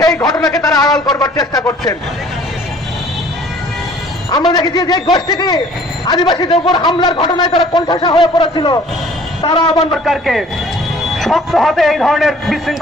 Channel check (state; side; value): normal; both; correlation 0.53